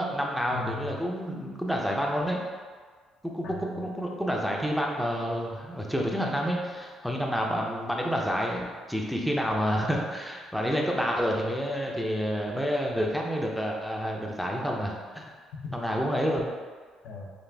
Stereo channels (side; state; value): both; normal; correlation 0.85